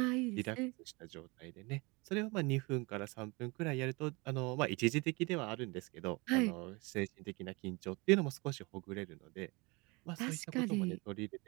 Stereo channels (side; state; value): left; quieter; 26.7 dB